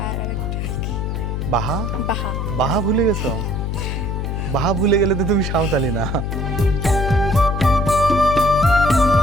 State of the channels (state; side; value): noise; left; hum, 2 dB below the sound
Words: আর আরেকটা কি? বাহা? বাহা। বাহা ভুলে গেছো? বাহা ভুলে গেলে তো তুমি সাঁওতালি না।